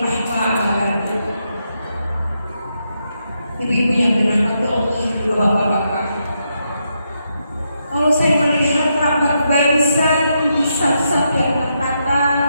Ibu-ibu yang dirahmati Allah, bapak-bapak, kalau saya melihat rapat barisan di saf-saf yang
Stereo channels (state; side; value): inverted; both; correlation -0.82